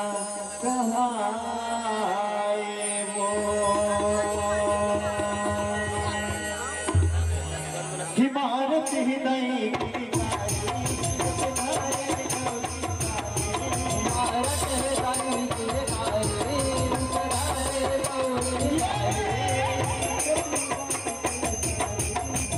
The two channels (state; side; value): identical; both; correlation 1.00